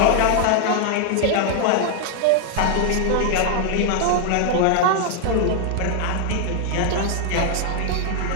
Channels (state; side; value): different; both; correlation 0.00